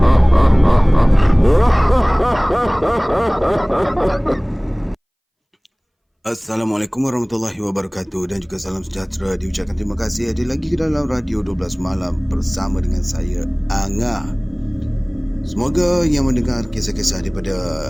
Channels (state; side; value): identical; both; correlation 1.00